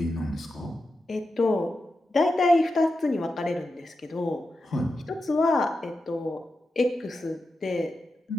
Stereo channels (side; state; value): both; normal; correlation 0.90